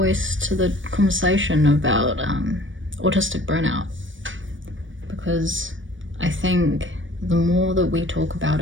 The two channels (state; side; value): late; left; 0.56 ms